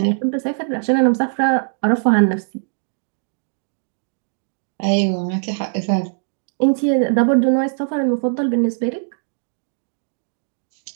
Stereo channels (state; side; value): silent; left; digital silence